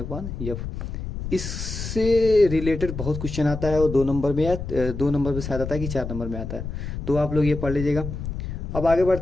इससे रिलेटेड बहुत क्वेश्चन आता है, वो 2 नंबर में या 2 नंबर में शायद आता है कि 4 नंबर में आता है। तो आप लोग ये पढ़ लीजिएगा। अब आगे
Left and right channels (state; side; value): noise; left; rumble, 6 dB below the sound